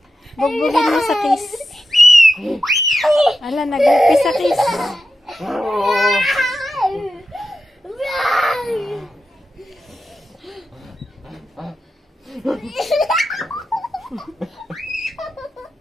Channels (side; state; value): both; normal; correlation 0.89